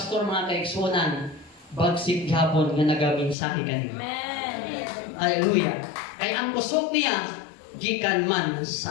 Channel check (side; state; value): right; drops out; at 3.4 s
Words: mga kaigsunan, bagsik gihapon nga nagaminsahe kanimo. Amen. Hallelujah. Kay ang kusog niya gikan man